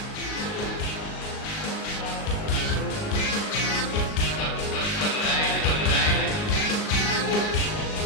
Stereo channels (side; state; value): right; late; 38 ms